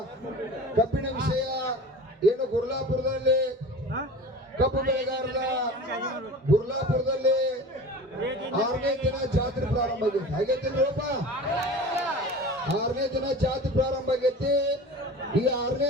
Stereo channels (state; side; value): normal; both; correlation 0.36